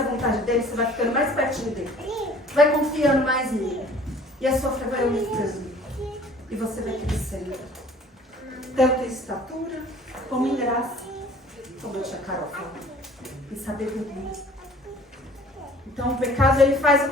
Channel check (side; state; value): both; normal; correlation 0.50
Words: vontade dele, você vai ficando mais pertinho dele. Vai confiando mais nele. E a sua fé vai aumentando. E você vai crescendo. Tanto em estatura, como em graça, como a tia Carol falou. Em sabedoria. Então o pecado ele faz o